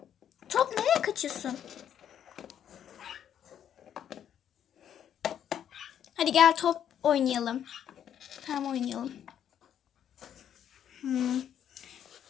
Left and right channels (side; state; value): right; quieter; 9.6 dB